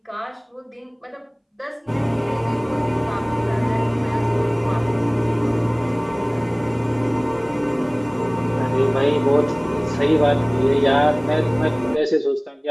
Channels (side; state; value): both; identical; correlation 1.00